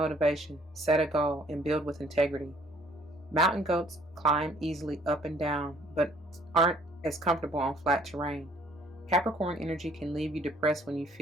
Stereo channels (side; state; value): both; normal; correlation 0.60